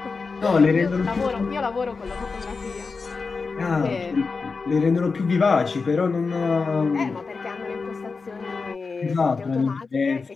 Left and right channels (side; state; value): right; quieter; 4.5 dB